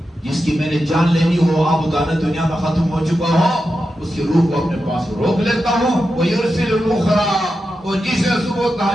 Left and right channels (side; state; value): both; normal; correlation 0.89